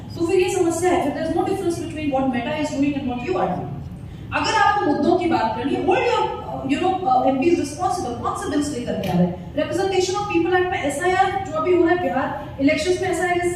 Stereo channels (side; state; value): both; identical; correlation 1.00